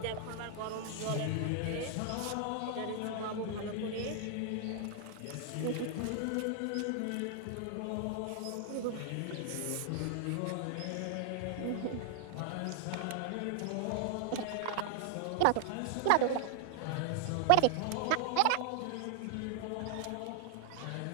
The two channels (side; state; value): both; different; correlation 0.00